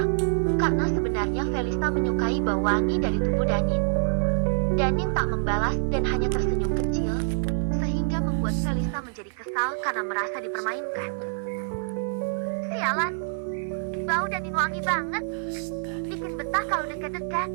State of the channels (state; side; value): silent; left; 61 dB below the other